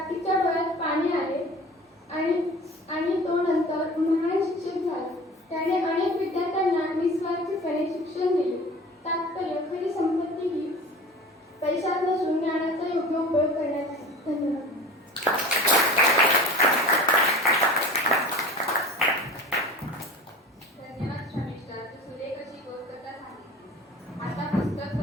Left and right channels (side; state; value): both; normal; correlation 0.39